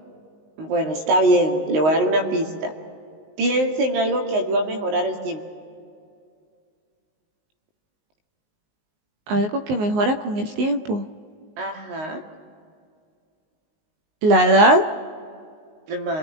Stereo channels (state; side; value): late; left; 19 ms